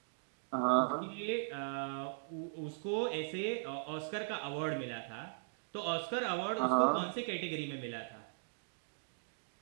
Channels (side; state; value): left; silent; digital silence